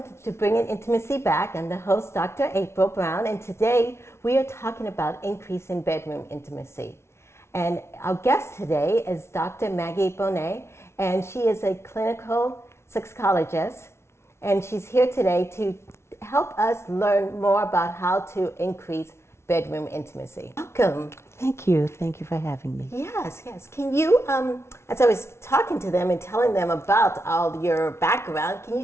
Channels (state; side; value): late; right; 0.13 ms